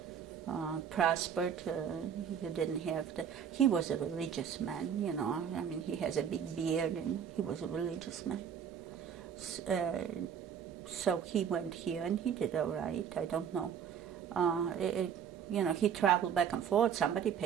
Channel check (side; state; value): left; quieter; 8.0 dB